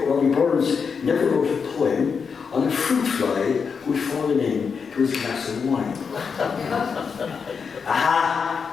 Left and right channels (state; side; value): quieter; right; 5.9 dB